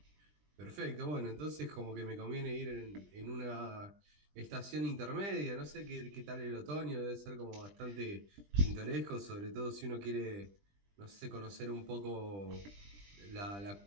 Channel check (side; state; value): left; late; 20 ms